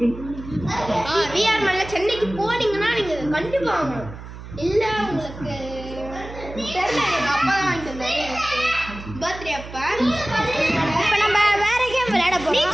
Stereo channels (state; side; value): noise; right; hum, 13 dB below the sound